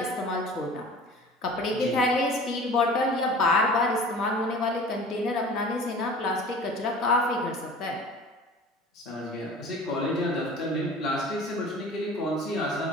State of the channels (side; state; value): both; normal; correlation 0.42